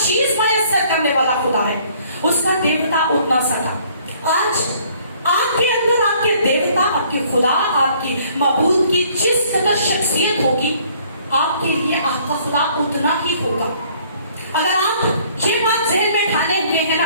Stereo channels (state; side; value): inverted; both; correlation -0.60